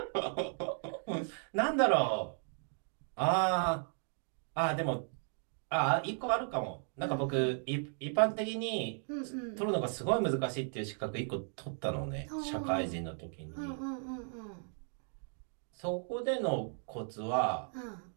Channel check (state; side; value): silent; left; 54 dB below the other